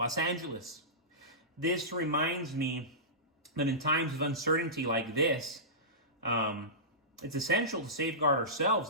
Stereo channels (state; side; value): normal; both; correlation -0.19